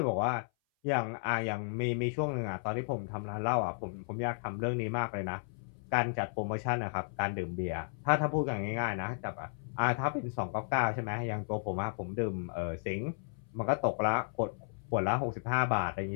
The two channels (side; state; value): right; silent; 55 dB below the other